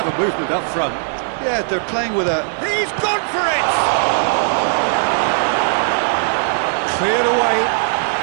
movement up front. Yeah, they're playing with a... He's gone for it! Cleared away.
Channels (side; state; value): left; silent; 59 dB below the other